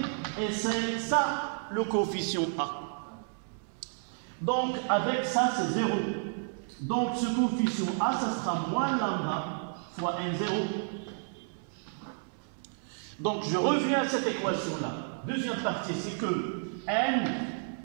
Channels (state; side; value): silent; left; 57 dB below the other